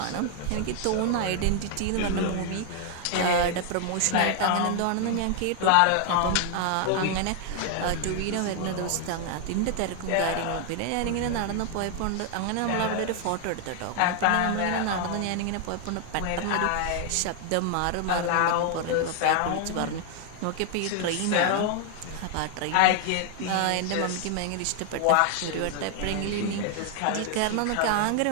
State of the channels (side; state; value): both; different; correlation 0.00